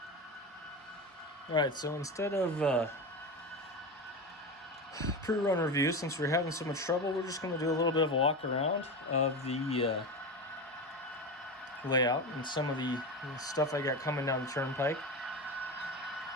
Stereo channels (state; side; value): normal; both; correlation 0.22